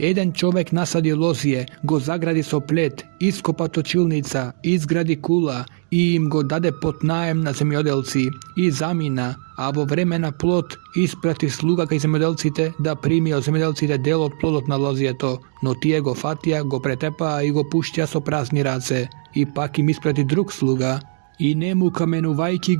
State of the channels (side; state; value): left; silent; 65 dB below the other